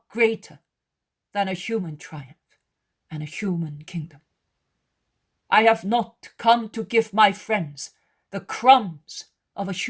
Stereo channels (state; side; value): identical; both; correlation 1.00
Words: greater than a human triumph and a human kingdom. I have not come to give my friends the crumbs of a